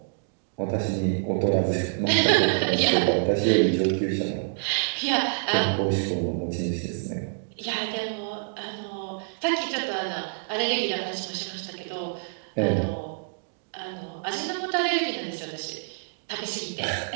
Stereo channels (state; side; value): silent; left; digital silence